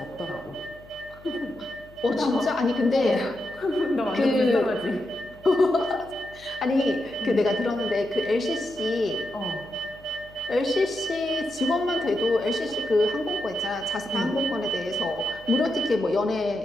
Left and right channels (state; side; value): noise; left; hum, 23 dB below the sound